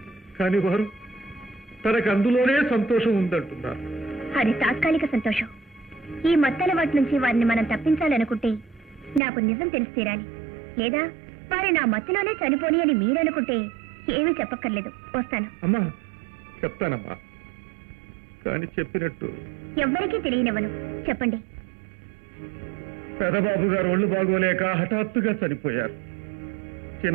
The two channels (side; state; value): left; drops out; at 9.2 s